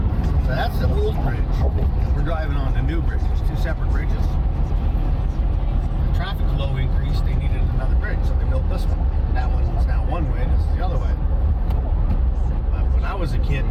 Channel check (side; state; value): both; identical; correlation 1.00